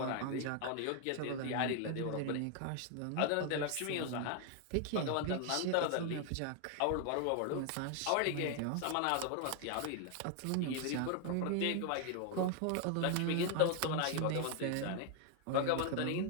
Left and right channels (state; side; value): different; both; correlation 0.00